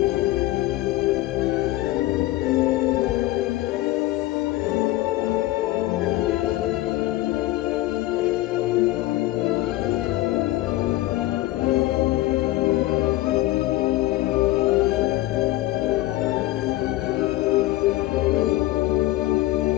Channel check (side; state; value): right; quieter; 17.0 dB